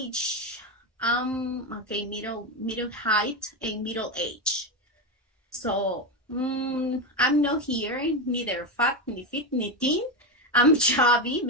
okay, middle height and middle age. So I'm not here, neither fat, ni fit, ni thin. I'm chubby,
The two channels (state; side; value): normal; both; correlation 0.13